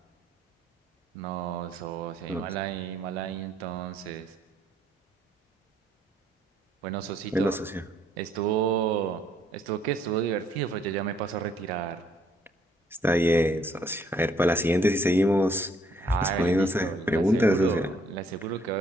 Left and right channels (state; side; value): normal; both; correlation 0.66